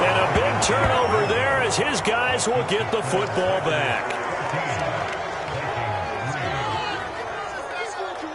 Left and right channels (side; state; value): both; identical; correlation 1.00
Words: a big turnover there as his guys will get the football back.